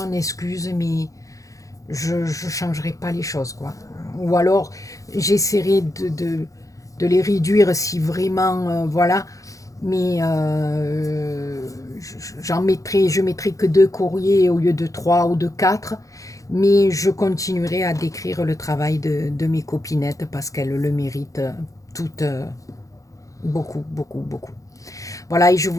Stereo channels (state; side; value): late; right; 0.16 ms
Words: excuse, mais je ne changerai pas les choses, quoi. Ou alors, j'essaierai de les réduire si vraiment, voilà. mais je mettrai que 2 courriers au lieu de 3 ou de 4, mais je continuerai à décrire le travail de mes copinettes parce qu'elles le méritent toutes beaucoup, beaucoup, beaucoup. Voilà, et je